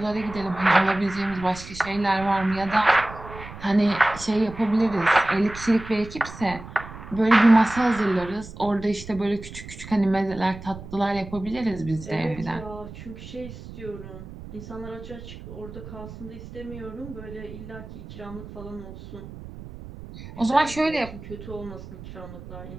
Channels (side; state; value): right; noise; rumble, 14 dB below the sound